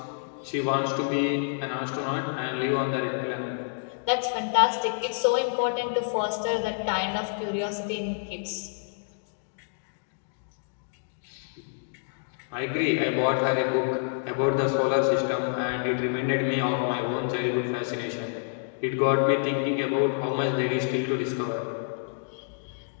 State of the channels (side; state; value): right; silent; digital silence